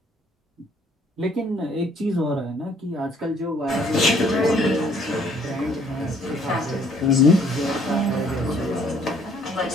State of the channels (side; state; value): both; normal; correlation 0.62